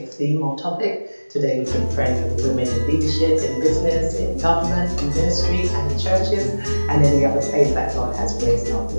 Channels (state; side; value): inverted; both; correlation -1.00